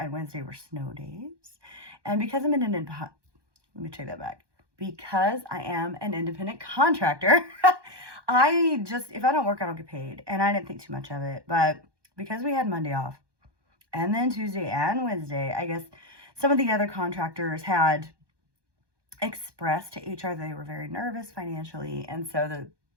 Wednesday were snow days. And because I'm let me take that back. Because I am an independent contractor, if I don't work, I don't get paid. And I didn't think too much of it. But because we had Monday off and then Tuesday and Wednesday, I guess some of the other contractors had expressed to HR they were very nervous financially. And so the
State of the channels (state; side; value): late; left; 1.2 ms